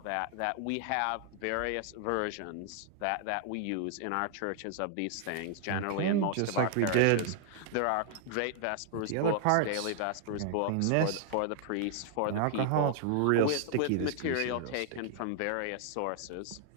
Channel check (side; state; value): both; different; correlation 0.00